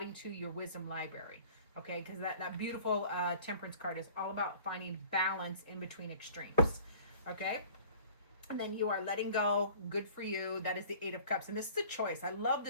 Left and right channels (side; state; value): both; inverted; correlation -0.47